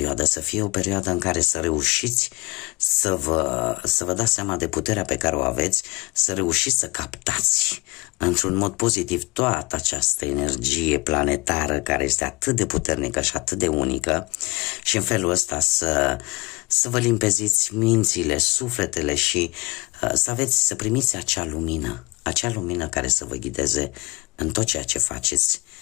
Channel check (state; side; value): quieter; right; 25.0 dB